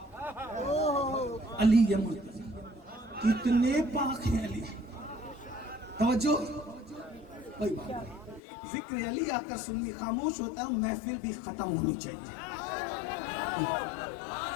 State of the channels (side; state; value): right; drops out; at 8.4 s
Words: علی مرتضی، کتنے پاک ہیں علی۔ توجہ، کوئی بات نہیں، ذکر علی آ کر سننی خاموش ہوتا ہے، محفل بھی ختم ہونی چاہیے۔